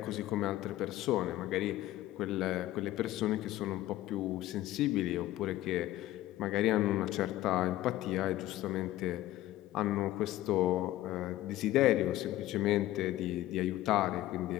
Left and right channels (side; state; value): right; quieter; 15.1 dB